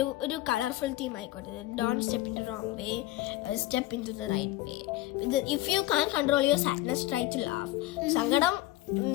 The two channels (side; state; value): right; quieter; 16.3 dB